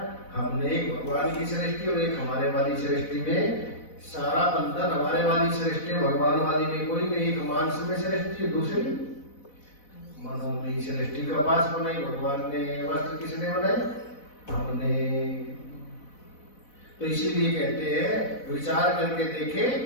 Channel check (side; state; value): right; late; 4.0 ms